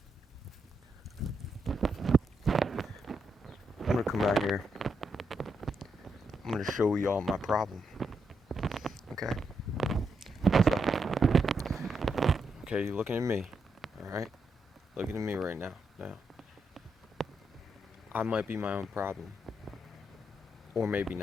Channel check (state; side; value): normal; both; correlation 0.81